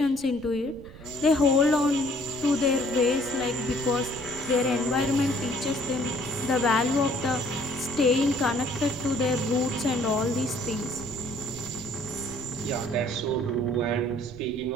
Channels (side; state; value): right; noise; rumble, 18 dB below the sound